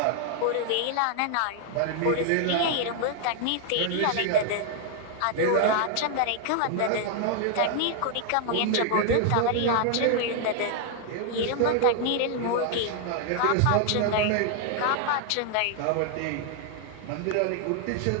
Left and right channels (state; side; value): different; both; correlation 0.00